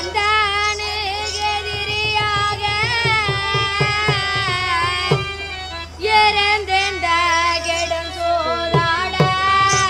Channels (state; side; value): identical; both; correlation 1.00